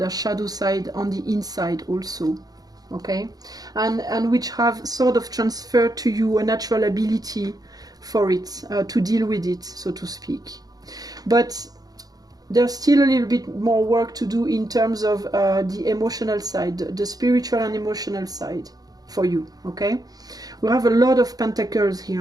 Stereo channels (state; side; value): late; left; 0.18 ms